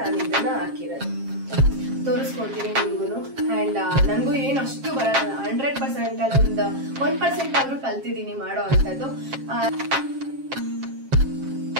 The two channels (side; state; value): left; late; 7.5 ms